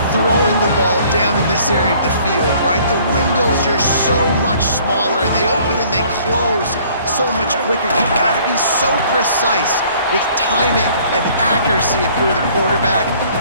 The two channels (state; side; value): inverted; both; correlation -0.57